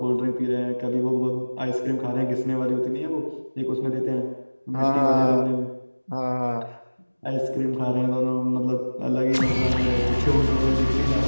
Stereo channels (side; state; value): both; inverted; correlation -1.00